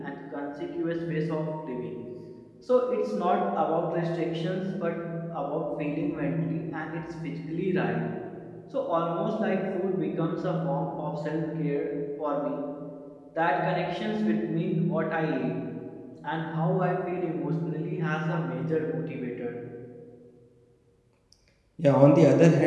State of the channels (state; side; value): identical; both; correlation 1.00